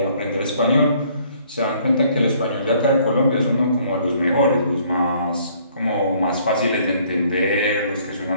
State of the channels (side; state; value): both; inverted; correlation -0.61